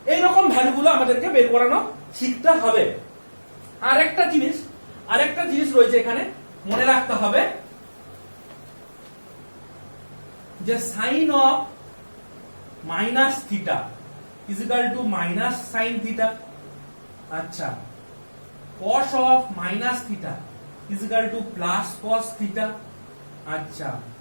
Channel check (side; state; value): both; inverted; correlation -1.00